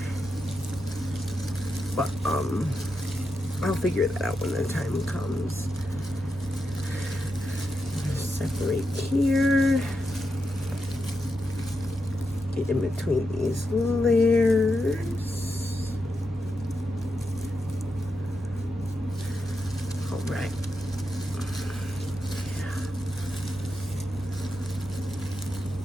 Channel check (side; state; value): both; normal; correlation 0.86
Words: But I'll figure that out when the time comes. Separate here. Get in between these layers. All right. Yeah.